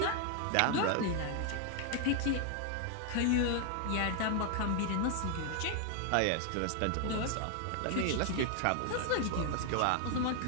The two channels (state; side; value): different; both; correlation 0.00